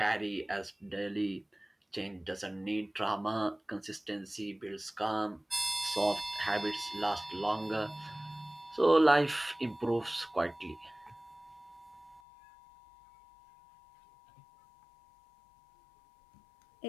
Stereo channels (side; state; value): right; drops out; at 12.2 s